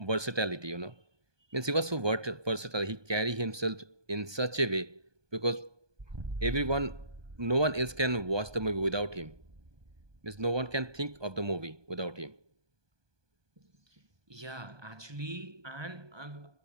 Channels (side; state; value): left; late; 1.2 ms